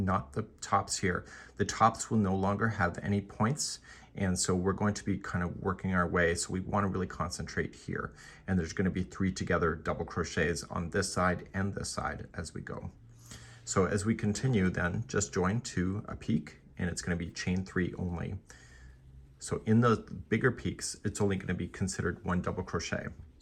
the tops here. The tops will no longer have any points, and so we're going to be kind of working our way, so we want to really concentrate here. And there's going to be 3 together double crochets on this side and this side as we go. So as we continue, then just join to a peak, and it's going to be chain 3 only. So in those bigger peaks, it's only going to be considered 1 double crochet.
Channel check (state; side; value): identical; both; correlation 1.00